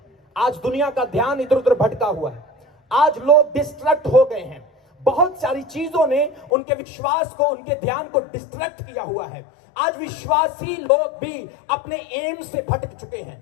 आज दुनिया का ध्यान इधर उधर भटका हुआ है। आज लोग डिस्ट्रैक्ट हो गए हैं। बहुत सारी चीजों ने उनके विश्वास को, उनके ध्यान को डिस्ट्रैक्ट किया हुआ है। आज विश्वासी लोग भी अपने एम से भटक चुके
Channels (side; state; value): right; drops out; at 6.5 s